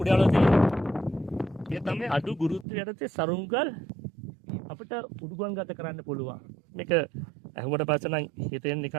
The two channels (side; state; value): left; drops out; at 2.7 s